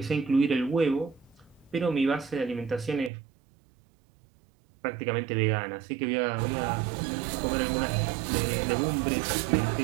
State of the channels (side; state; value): left; drops out; at 3.1 s